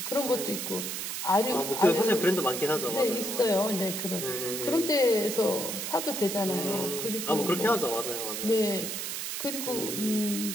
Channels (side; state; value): right; noise; hiss, 4 dB below the sound